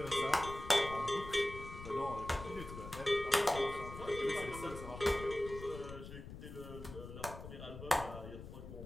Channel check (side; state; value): left; noise; rumble, 11 dB below the sound